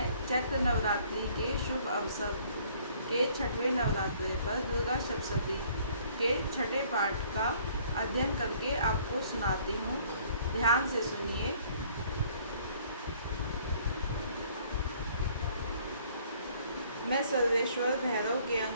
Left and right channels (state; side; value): inverted; both; correlation -0.59